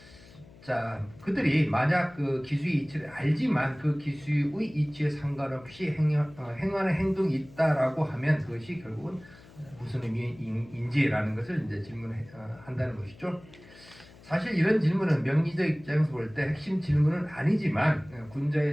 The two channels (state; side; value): noise; left; hum, 22 dB below the sound